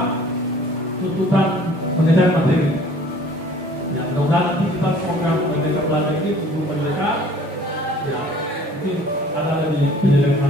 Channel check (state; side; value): normal; both; correlation 0.52